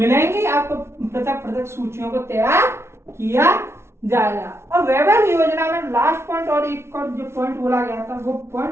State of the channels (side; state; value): left; late; 0.13 ms